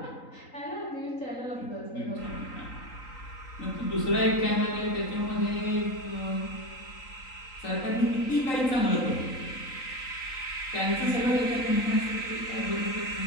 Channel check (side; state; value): right; late; 3.9 ms